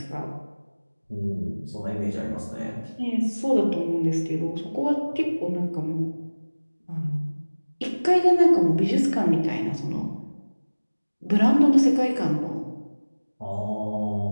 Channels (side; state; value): both; inverted; correlation -1.00